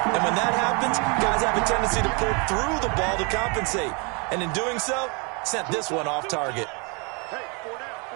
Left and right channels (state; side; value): quieter; left; 32.3 dB